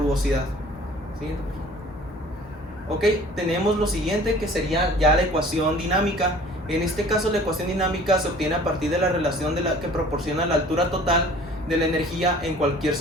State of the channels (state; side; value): normal; both; correlation 0.49